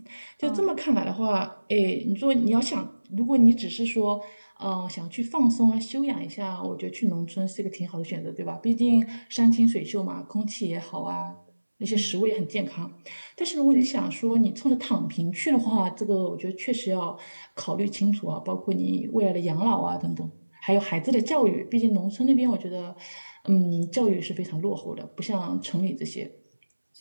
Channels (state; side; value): inverted; both; correlation -1.00